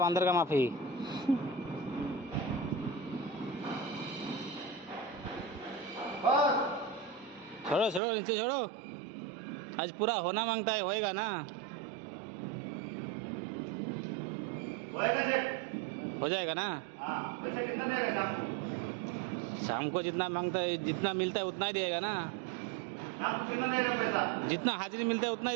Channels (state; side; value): drops out; left; at 8.0 s